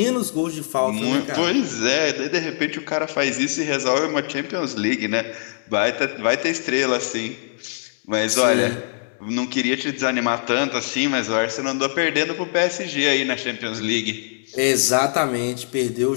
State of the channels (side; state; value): right; silent; digital silence